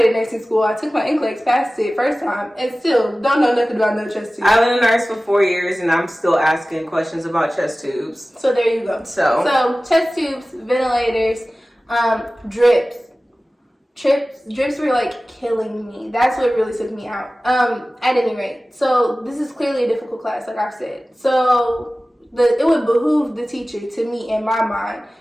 nursing school. I took my NCLEX, passed it first time, and still don't know nothing about no chest tubes. I've been a nurse for 4 years, and I'm still asking questions about chest tubes. So there you go. So chest tubes, ventilators, drips. Drips were like killing me. That's what really took me out. At any rate, so this is clearly a difficult class, like I've said. So it would behoove the teacher, to me, in my mind,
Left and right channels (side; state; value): both; normal; correlation 0.97